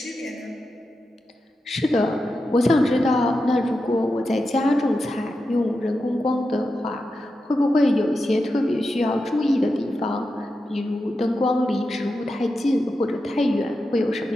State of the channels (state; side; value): normal; both; correlation 0.89